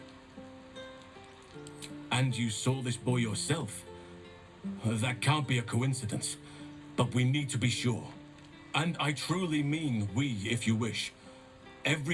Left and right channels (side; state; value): both; identical; correlation 1.00